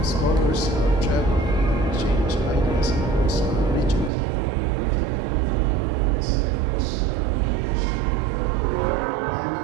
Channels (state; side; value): drops out; left; at 4.1 s